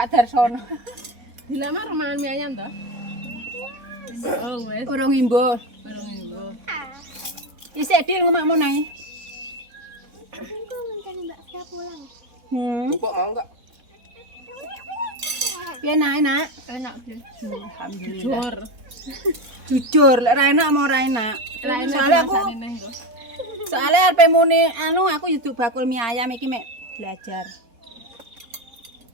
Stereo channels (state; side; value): late; left; 4.1 ms